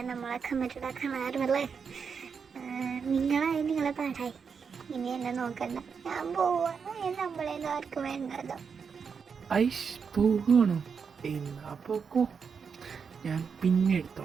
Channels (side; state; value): left; quieter; 6.1 dB